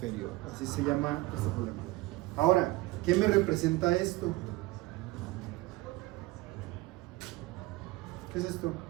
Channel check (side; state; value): left; quieter; 19.5 dB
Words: Así se llama este problema. Ahora, ¿qué me representa esto? ¿Qué es esto?